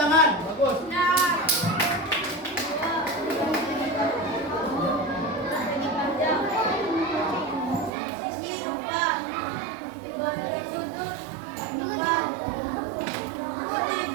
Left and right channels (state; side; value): drops out; left; at 7.9 s